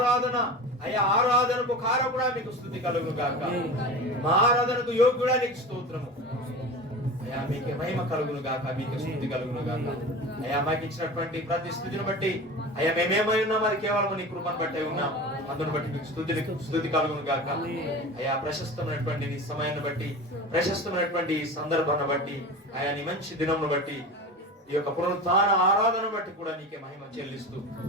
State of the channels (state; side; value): normal; both; correlation 0.32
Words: అయ్యా, ఆరాధనకు కారకుడా మీకు స్తుతి కలుగును గాక. మా ఆరాధనకు యోగ్యుడా నీకు స్తోత్రము అయ్యా. మీకే మహిమ కలుగును గాక, మీకు స్తుతి కలుగును గాక. అయ్యా మాకు ఇచ్చినటువంటి ప్రతి స్థితిని బట్టి అయ్యా మేమేమై ఉన్నాం అది కేవలం నీ కృపను బట్టే ఉన్నాం. అందును బట్టి మీకు స్తుతి కలుగును గాక. అయ్యా ప్రశస్తమైనటువంటి నీ సమయాన్ని బట్టి, ప్రశస్తమైనటువంటి ఈ సందర్భాన్ని బట్టి, అయ్యా నీ మంచి దినమును బట్టి ఈ యొక్క పునరుత్థాన ఆరాధన బట్టి కూడా నీకే మహిమ చెల్లిస్తూ